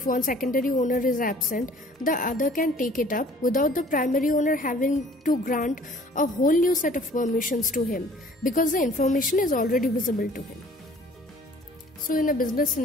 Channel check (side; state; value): both; normal; correlation 0.52